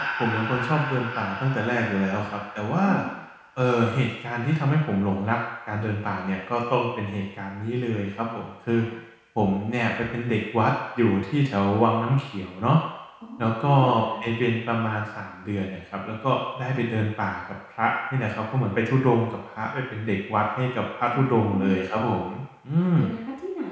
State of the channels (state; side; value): identical; both; correlation 1.00